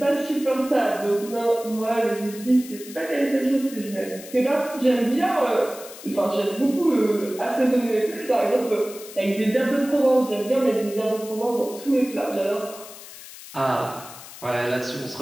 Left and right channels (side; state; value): left; noise; hiss, 16 dB below the sound